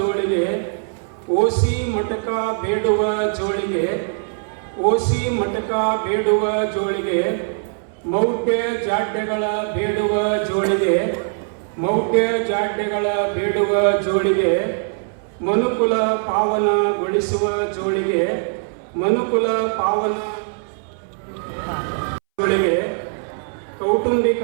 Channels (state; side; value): silent; left; 63 dB below the other